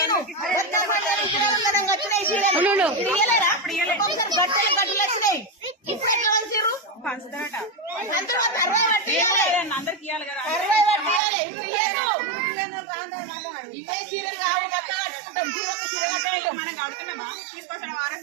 మనం కడుతున్నామా తీసుకొచ్చిన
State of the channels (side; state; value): left; drops out; at 11.2 s